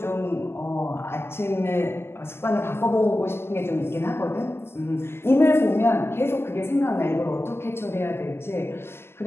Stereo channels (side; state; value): right; late; 0.12 ms